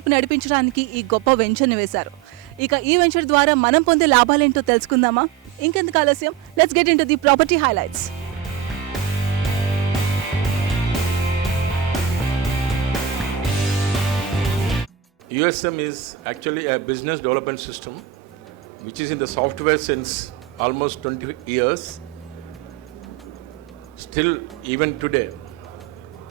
నడిపించడానికి ఈ గొప్ప వెంచర్ ని వేశారు. ఇక ఈ వెంచర్ ద్వారా మనం పొందే లాభాలేంటో తెలుసుకుందామా? ఇంకెందుకు ఆలస్యం, let's get into the property highlights. USM is actually a business development system which is in the software since almost 20 years. Still, even today,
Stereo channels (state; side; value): quieter; left; 9.4 dB